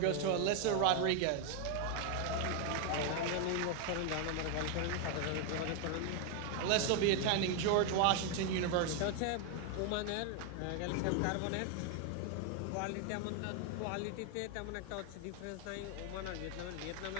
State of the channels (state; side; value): different; both; correlation 0.01